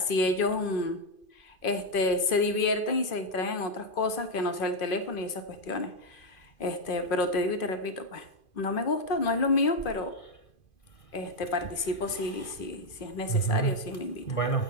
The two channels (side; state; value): right; late; 2.5 ms